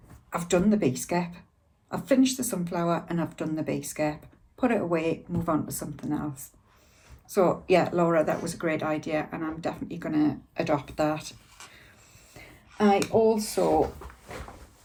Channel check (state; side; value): identical; both; correlation 1.00